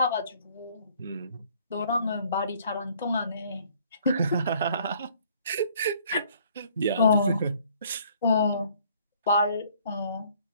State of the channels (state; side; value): inverted; both; correlation -0.60